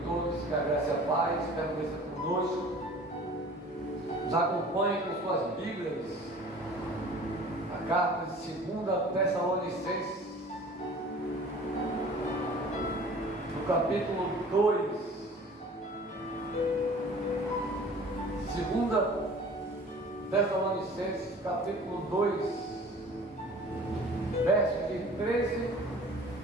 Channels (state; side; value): normal; both; correlation 0.46